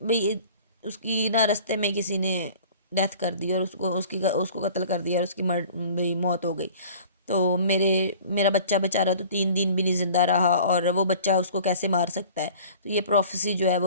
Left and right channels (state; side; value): inverted; both; correlation -0.45